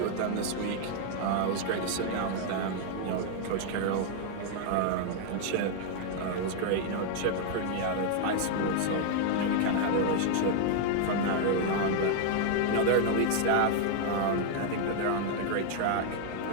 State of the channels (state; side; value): different; both; correlation 0.00